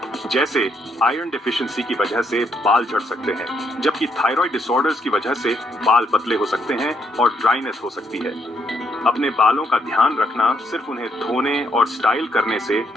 जैसे आयरन डिफिशिएंसी की वजह से बाल झड़ सकते हैं, जबकि थायराइड डिसऑर्डर्स की वजह से बाल पतले हो सकते हैं और ड्राइनेस हो सकती है। अपने बालों का ध्यान रखना सिर्फ उन्हें धोने और स्टाइल करने से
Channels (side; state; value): both; normal; correlation 0.74